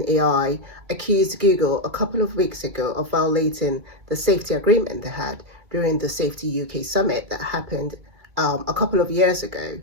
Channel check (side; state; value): left; late; 2.3 ms